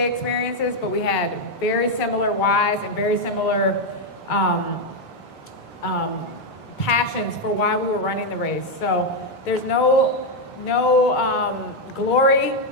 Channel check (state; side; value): normal; both; correlation 0.03